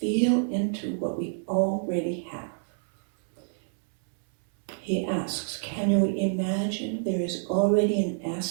into what we already have. He asks, can you imagine there is already an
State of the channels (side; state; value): left; silent; 60 dB below the other